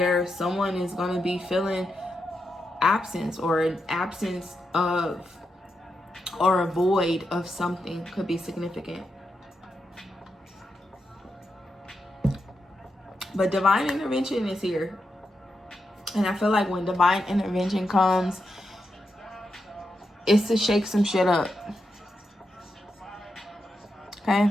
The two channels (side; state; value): both; normal; correlation 0.86